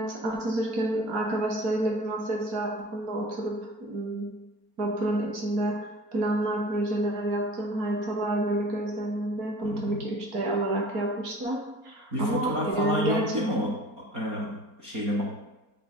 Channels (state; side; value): late; left; 4.3 ms